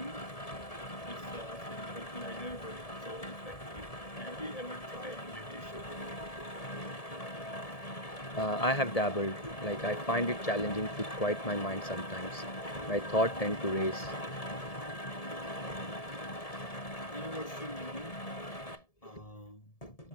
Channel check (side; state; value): right; late; 1.7 ms